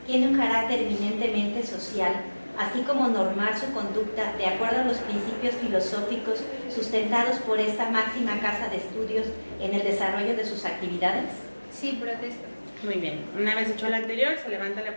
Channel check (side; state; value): both; inverted; correlation -1.00